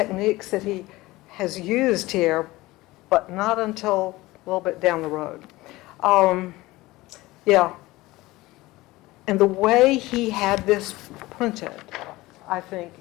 that he has used here, but not until a little bit down the road. Yeah. And the way he had this printed, I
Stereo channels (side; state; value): right; quieter; 19.4 dB